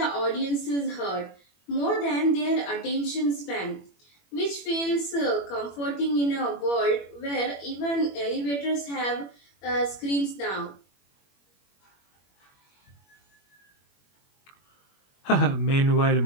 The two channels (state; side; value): late; right; 21 ms